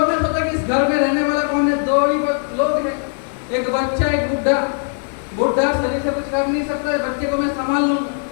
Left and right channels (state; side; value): silent; right; 66 dB below the other